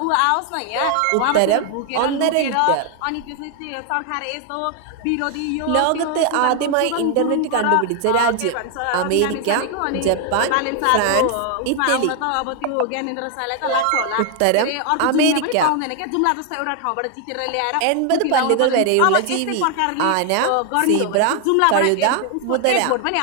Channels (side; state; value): both; different; correlation 0.00